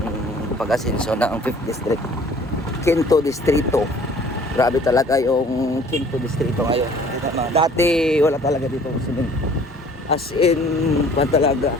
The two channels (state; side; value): normal; both; correlation 0.53